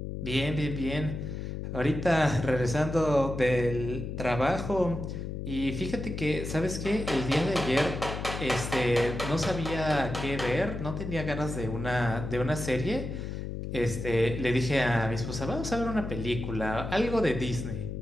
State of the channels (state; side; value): noise; left; hum, 5 dB below the sound